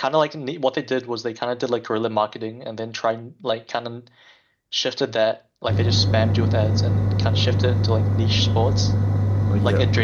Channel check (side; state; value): both; identical; correlation 1.00